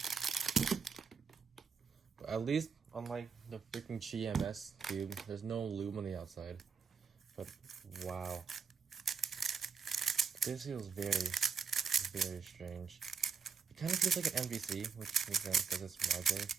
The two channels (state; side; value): quieter; left; 5.8 dB